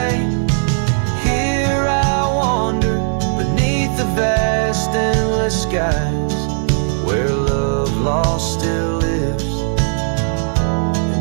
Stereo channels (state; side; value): silent; left; 62 dB below the other